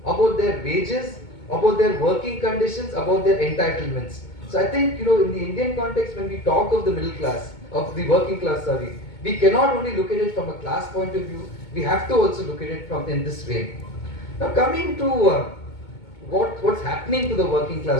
about their wages, about their working conditions, about their entitlements. So I think, in the Indian context, when we talk of the middle class, of the working class, we cannot only look at it from a class point of view, we have to also look at it from in this way. Now coming to what's happening to the working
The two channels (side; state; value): right; late; 2.2 ms